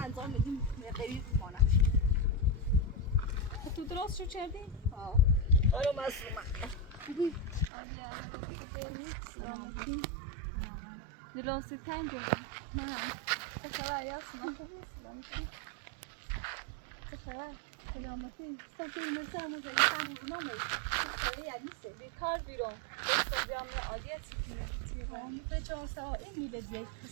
انجام میدیم قریب مانه. تو درست شو کردی؟ آه. آره مسلومه. خوبی؟ سلامتی. دلوسی تنگ جدی. نه. چه خبر یاسمین؟ خوبی؟ سلامتی. چه خبر؟ سلامتی. استفاده مثلا موزه انسان رو نمی. چه یاد نیست. بیکار بیرون. دست بیام عادیتی کنم. به 4 ساعت این میله دیگه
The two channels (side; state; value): left; drops out; at 7.7 s